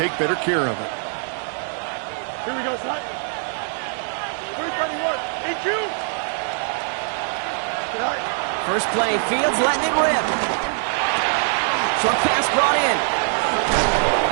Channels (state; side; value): silent; left; 59 dB below the other